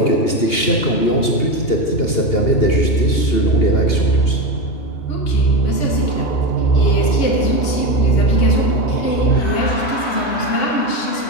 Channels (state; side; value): late; right; 2.8 ms